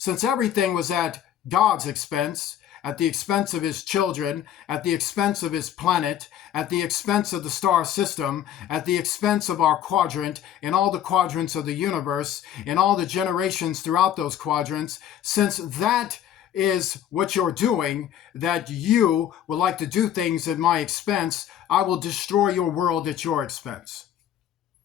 everything was at God's expense, at the expense of his children, at the expense of his planet, at the expense of the star system, at the expense of our quadrant, and all the quadrants of the universe, and all the generations throughout those quadrants, since that is what you're doing, that you would like to do things at my expense, I will destroy your world at your expense.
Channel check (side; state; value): right; quieter; 10.5 dB